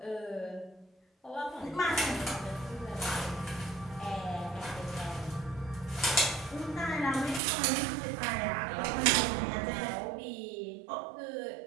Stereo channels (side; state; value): left; drops out; at 7.4 s